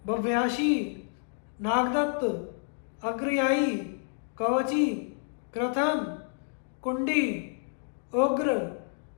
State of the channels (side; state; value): right; silent; 58 dB below the other